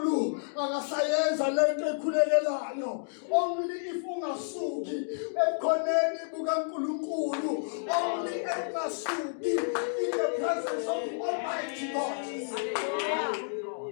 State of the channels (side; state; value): right; silent; digital silence